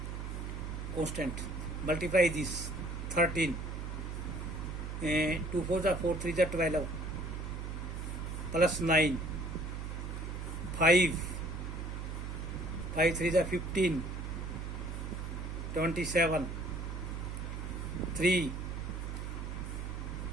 constant. Multiply this 13. 2 4s are 4 3s are 12 plus 9, 5 3s are 15, 27, 3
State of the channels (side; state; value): right; noise; hum, 5 dB below the sound